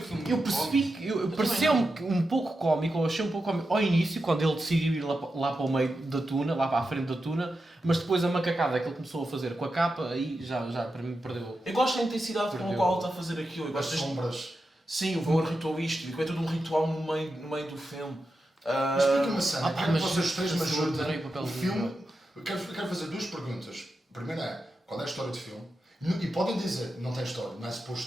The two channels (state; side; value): normal; both; correlation 0.89